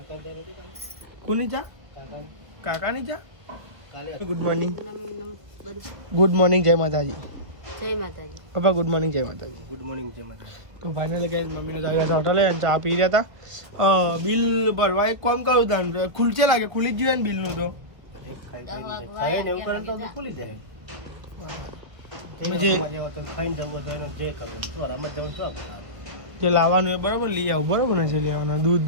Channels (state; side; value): late; left; 1.6 ms